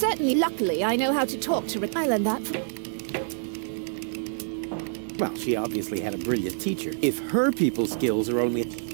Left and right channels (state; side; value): silent; left; digital silence